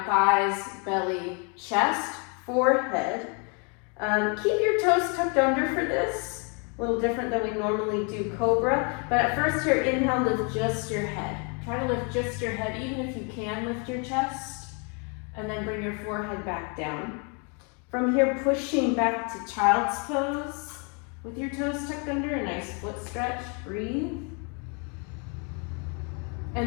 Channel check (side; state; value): right; quieter; 35.8 dB